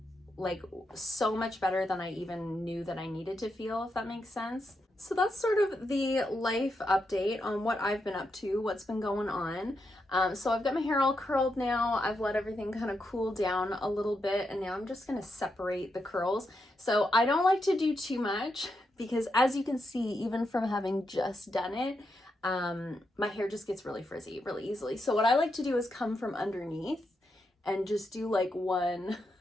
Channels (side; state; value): both; normal; correlation 0.84